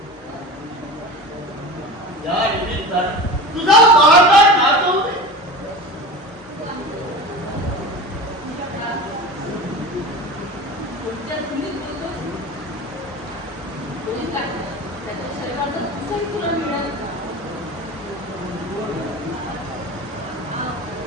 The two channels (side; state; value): both; normal; correlation 0.32